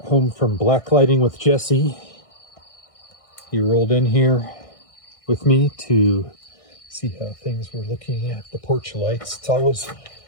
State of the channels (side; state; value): right; late; 1.6 ms